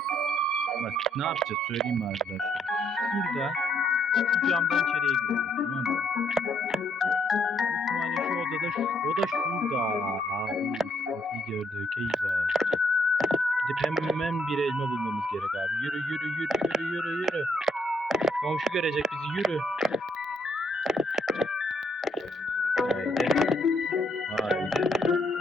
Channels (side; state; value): both; normal; correlation 0.71